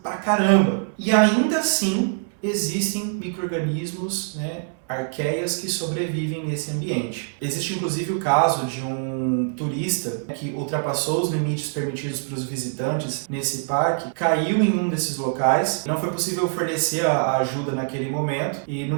pra caramba. E ainda assim existem micro-organismos, né, arqueias que sobrevivem nesse ambiente. Existe inclusive o caso de um turista que ultrapassou os limites permitidos para os visitantes nesse parque, caiu em um desses locais, não foi possível fornecer a ajuda naquele momento e no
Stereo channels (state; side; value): silent; left; 63 dB below the other